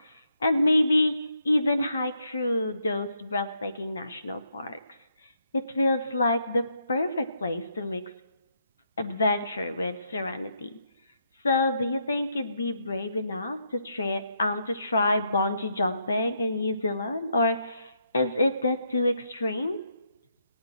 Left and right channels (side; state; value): both; inverted; correlation -0.78